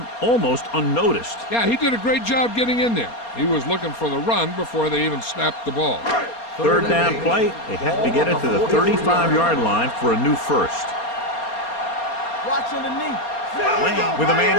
almost unnoticed. Yeah, he did a great job getting in there. He was looking for the run before they even snapped the ball. Third down play. They have to get it to the 35-yard line for a new first. Watch underneath. Lane with a man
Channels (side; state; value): right; late; 4.3 ms